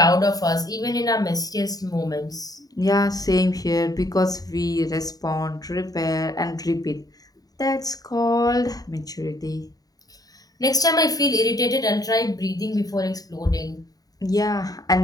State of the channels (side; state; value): right; late; 0.18 ms